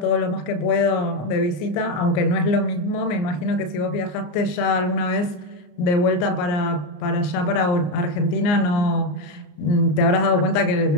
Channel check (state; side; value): late; right; 33 ms